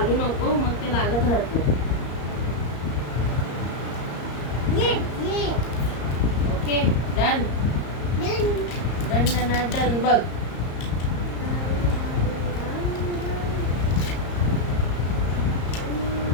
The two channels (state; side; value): late; right; 34 ms